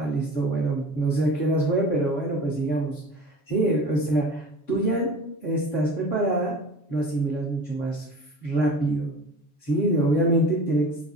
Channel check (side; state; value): right; late; 7.3 ms